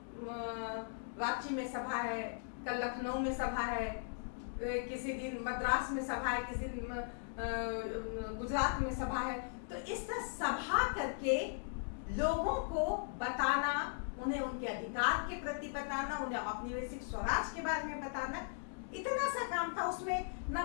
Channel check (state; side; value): silent; right; digital silence